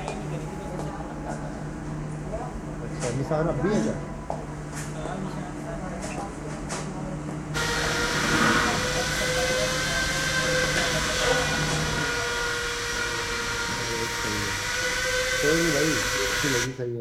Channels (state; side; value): identical; both; correlation 1.00